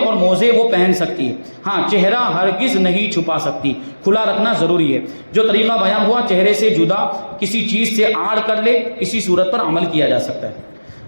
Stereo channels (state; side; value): inverted; both; correlation -1.00